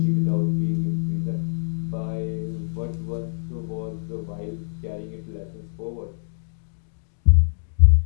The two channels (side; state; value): right; silent; digital silence